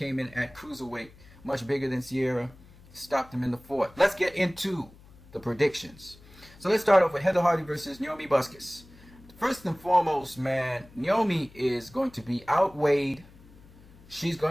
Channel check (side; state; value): left; noise; hum, 23 dB below the sound